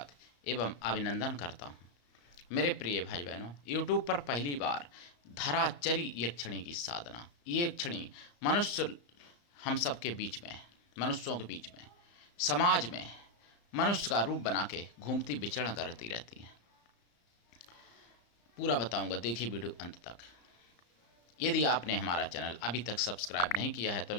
एवं अभिनंदन करता हूं। मेरे प्रिय भाई बहनों, यूट्यूब पर पहली बार धराचरी यक्षिणी की साधना, ये यक्षिणी मनुष्य हम सबके बीच में, मनुष्यों के बीच में, समाज में मनुष्य का रूप बना के घूमती विचरण करती रहती हैं। पूरा बताऊंगा, देखिए वीडियो अंत तक। यदि आपने हमारा चैनल अभी तक सब्सक्राइब नहीं किया है तो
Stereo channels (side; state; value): right; late; 34 ms